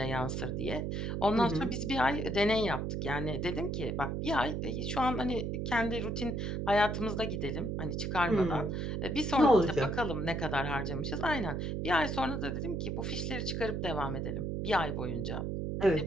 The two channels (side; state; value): right; noise; hum, 2 dB below the sound